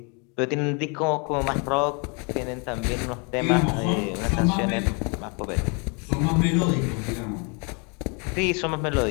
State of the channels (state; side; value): quieter; right; 33.9 dB